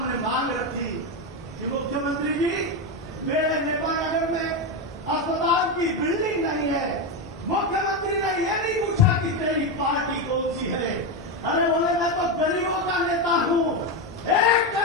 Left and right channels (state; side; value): normal; both; correlation 0.11